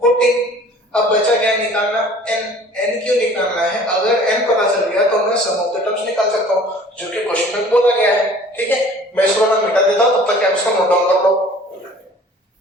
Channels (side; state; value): both; normal; correlation 0.49